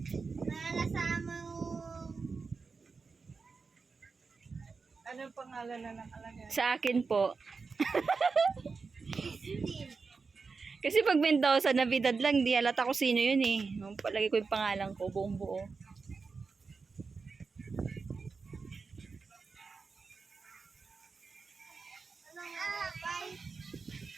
Nalasama yung... Anong pangalan na nakalagay? Sa akin po. Steel. Kasi pag Mendoza, Navidad lang, di halata ko sino yun eh. Palagi ko yung pangalan ko, buong buo.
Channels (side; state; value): left; quieter; 4.7 dB